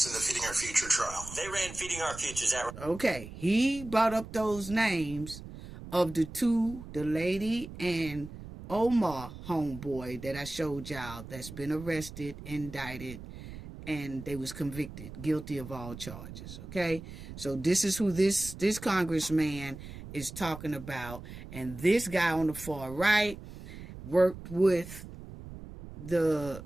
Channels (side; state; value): right; noise; rumble, 13 dB below the sound